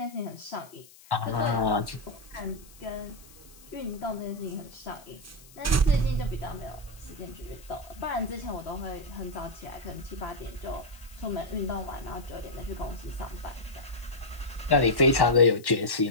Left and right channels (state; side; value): noise; left; hiss, 22 dB below the sound